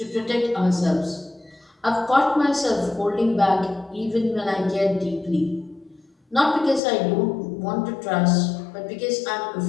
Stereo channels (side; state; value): right; drops out; at 6.8 s